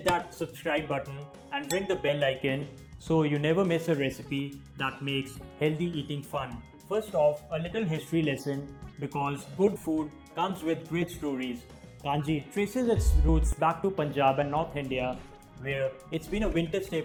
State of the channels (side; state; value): both; identical; correlation 1.00